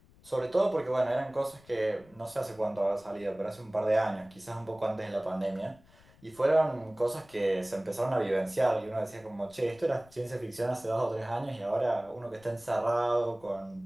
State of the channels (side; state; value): left; noise; rumble, 27 dB below the sound